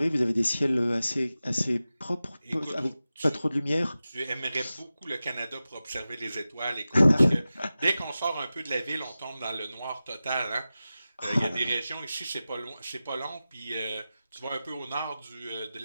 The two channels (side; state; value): both; inverted; correlation -0.95